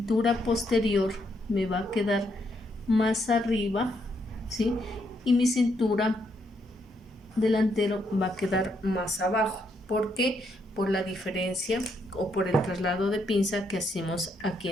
posterior me va a quedar más arriba, ¿sí? Y mi cintura delantero va a quedar más abajo. ¿Por qué? Por la diferencia o por el traslado de pinza que hacemos aquí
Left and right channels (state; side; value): normal; both; correlation 0.76